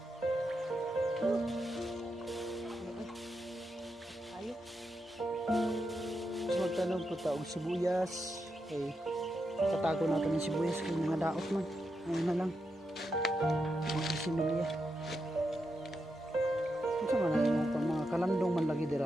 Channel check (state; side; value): normal; both; correlation 0.85